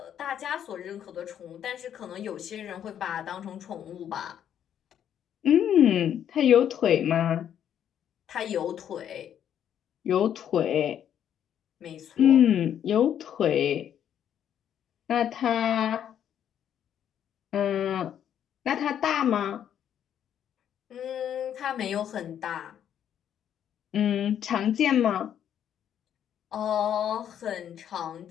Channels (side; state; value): right; quieter; 9.7 dB